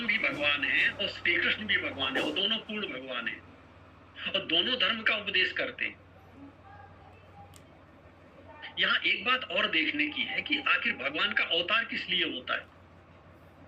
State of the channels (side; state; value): both; identical; correlation 1.00